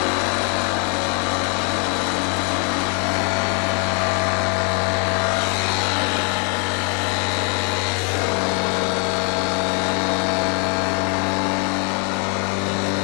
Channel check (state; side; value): quieter; right; 35.9 dB